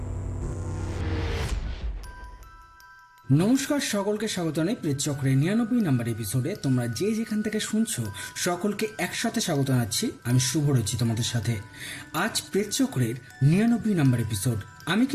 নমস্কার, সকলকে স্বাগত জানাই প্রেতচক্রের 99 নম্বর এপিসোডে। তোমরা যে যেখান থেকে শুনছো সকলকে একসাথে স্বাগত জানাচ্ছি। আমি শুভ রয়েছি তোমাদের সাথে। আজ প্রেতচক্রের 99 নম্বর এপিসোড। আমি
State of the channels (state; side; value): identical; both; correlation 1.00